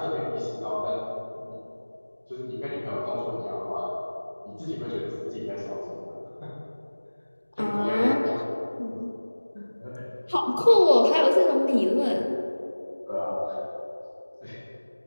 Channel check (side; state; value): both; inverted; correlation -1.00